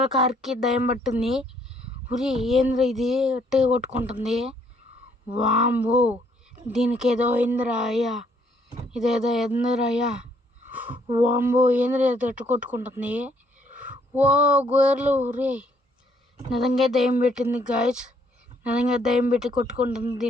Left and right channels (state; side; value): normal; both; correlation 0.67